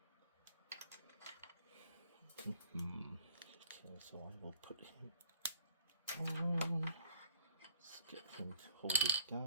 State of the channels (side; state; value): both; inverted; correlation -0.58